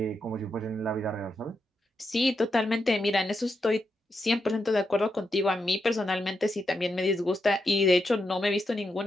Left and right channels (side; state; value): both; normal; correlation 0.84